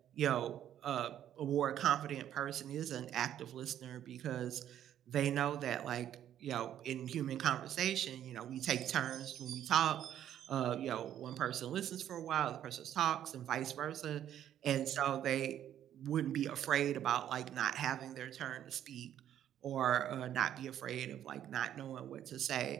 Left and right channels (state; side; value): quieter; left; 10.8 dB